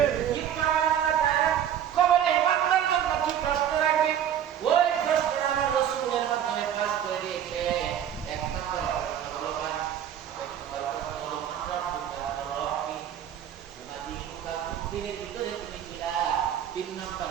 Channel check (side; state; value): left; quieter; 9.7 dB